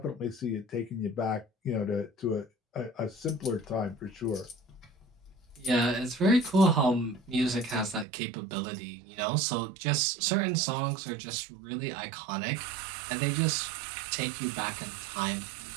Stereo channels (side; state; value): left; drops out; at 8.1 s